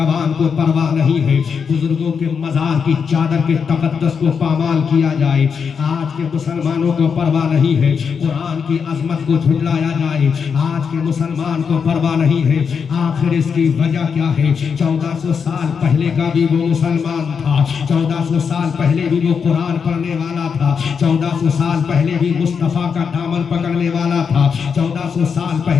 को परवाह नहीं है, बुजुर्गों के मजार की चादर के तकद्दस को पामाल किया जाए आज के मुसलमानों को परवाह नहीं है, कुरान की अजमत को झुटलाया जाए आज के मुसलमान को परवाह नहीं है। आखिर इसकी वजह क्या है? 1400 साल पहले का भी वो मुसलमान था, 1400 साल पहले भी वो कुरान पढ़ने वाला था, 1400 साल पहले भी मुस्तफा का दामन पकड़ने वाला था, 1400 साल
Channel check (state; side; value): quieter; right; 6.3 dB